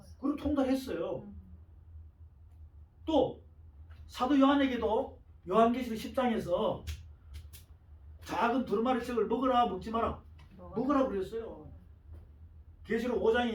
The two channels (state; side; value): identical; both; correlation 1.00